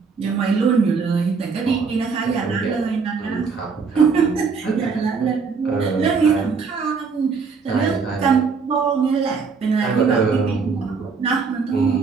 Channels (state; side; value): quieter; left; 5.1 dB